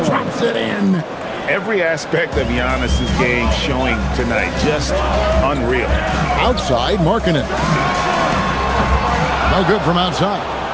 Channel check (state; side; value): identical; both; correlation 1.00